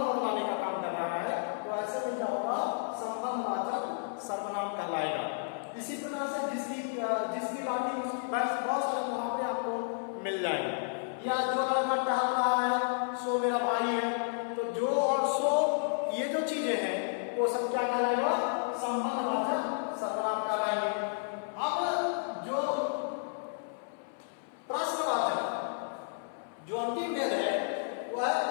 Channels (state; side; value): silent; right; 56 dB below the other